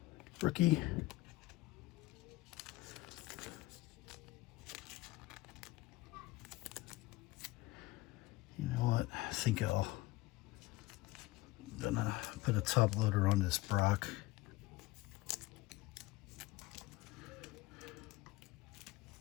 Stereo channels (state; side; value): quieter; right; 19.3 dB